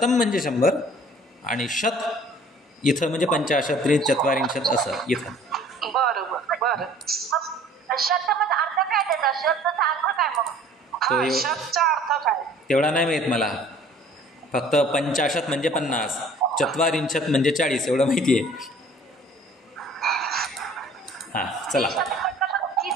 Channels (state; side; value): normal; both; correlation 0.52